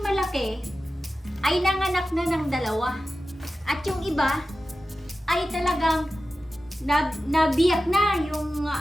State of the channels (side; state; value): both; normal; correlation 0.94